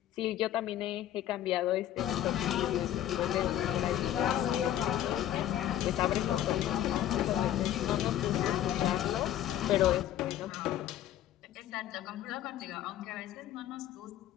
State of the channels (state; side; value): quieter; right; 12.0 dB